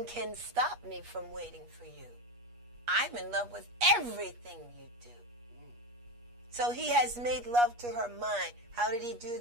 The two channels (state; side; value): late; left; 8.4 ms